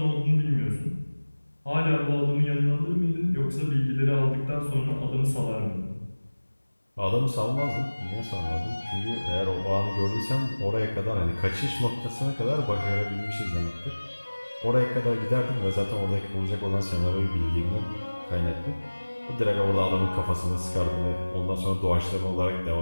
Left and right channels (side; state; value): both; inverted; correlation -1.00